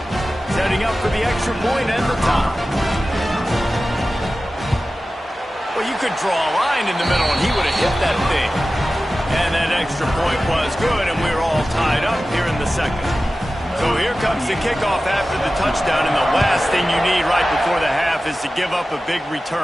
Setting up for the extra point and the top. Well, you could draw a line in the middle, and he would have hit that thing. And that extra point was good, and we're all tied up here in the second. So here comes the kickoff after the touchdown, and the last thing you need right before the half is to give up a big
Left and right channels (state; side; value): normal; both; correlation 0.95